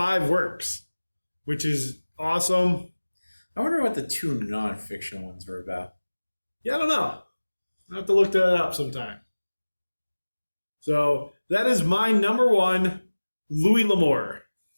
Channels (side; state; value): both; inverted; correlation -1.00